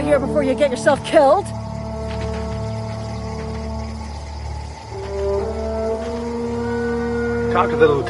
before you get yourself killed! Talk to the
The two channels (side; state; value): both; identical; correlation 1.00